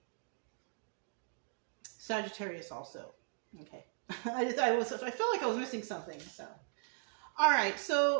Sagittarius also. Okay. I felt like I was missing something. So, all right.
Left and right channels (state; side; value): silent; left; 53 dB below the other